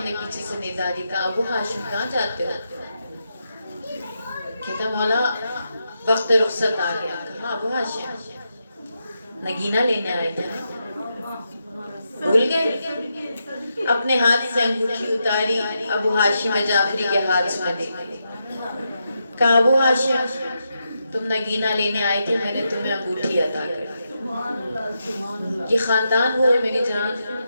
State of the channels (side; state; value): both; inverted; correlation -0.85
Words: نے پیچھے سے ندا دی, کہا ابو ہاشم کہاں جاتے ہو؟ کہتا مولا وقت رخصت آ گیا. کہا ابو ہاشم نگینہ لینے آئے تھے, بھول گئے؟ اپنے ہاتھ سے انگوٹھی اتاری, ابو ہاشم جعفری کے ہاتھ میں دی. کہا ابو ہاشم تم نگینہ لینے آئے تھے, میں نے تمہیں انگوٹھی عطا کر دی. یہ خاندان وہ ہے میری جان